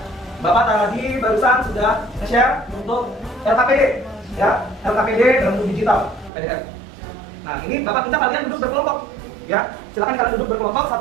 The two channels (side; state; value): left; drops out; at 6.3 s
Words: Bapak tadi barusan sudah share untuk LKPD, ya, LKPD dalam bentuk digital, PDF. Nah, ini Bapak minta kalian duduk berkelompok, ya. Silakan kalian duduk berkelompok,